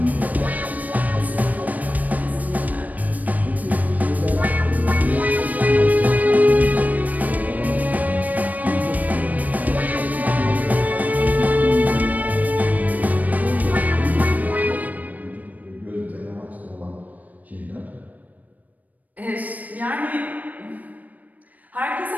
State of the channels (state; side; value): late; left; 0.077 ms